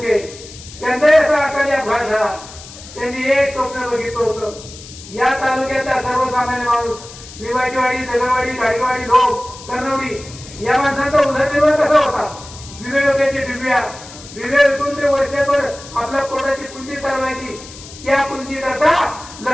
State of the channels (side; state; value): left; noise; hiss, 16 dB below the sound